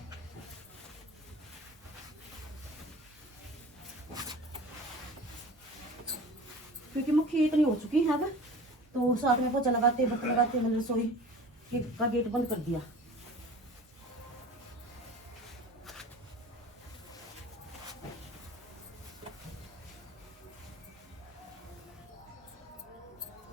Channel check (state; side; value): normal; both; correlation 0.40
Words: क्योंकि मुखी इतनी हो चुकी है अब, तो साथ में पोछा लगाते बर्तन लगाते मैंने रसोई का गेट बंद कर दिया।